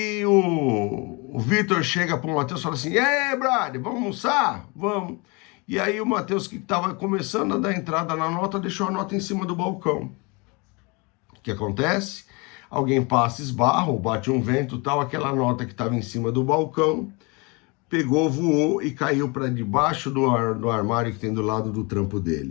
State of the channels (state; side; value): quieter; right; 28.8 dB